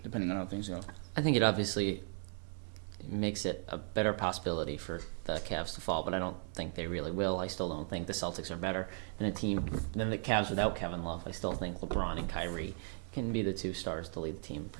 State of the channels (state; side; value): silent; left; 53 dB below the other